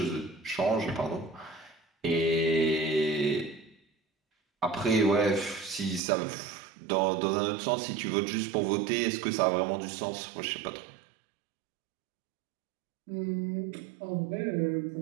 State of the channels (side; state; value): left; drops out; at 6.0 s